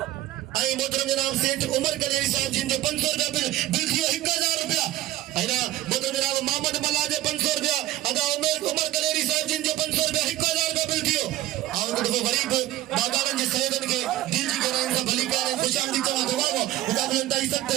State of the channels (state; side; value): quieter; left; 15.0 dB